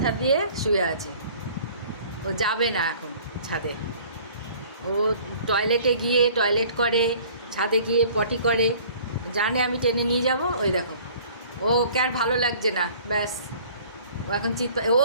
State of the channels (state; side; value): inverted; both; correlation -0.51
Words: দিয়ে শুয়ে আছে। ও যাবে না এখন ছাদে। ও টয়লেটে গিয়ে টয়লেট করে, ছাদে গিয়ে পটি করে, জানে আমি টেনে নিয়ে যাব। ওই দেখো, ওকে আর ভালো লাগছে না, ব্যাস ও এখন ও